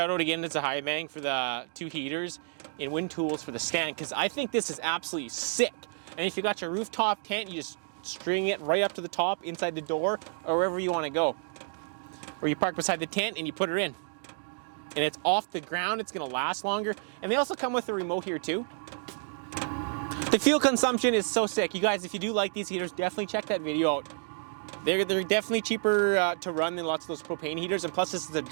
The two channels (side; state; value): left; silent; 58 dB below the other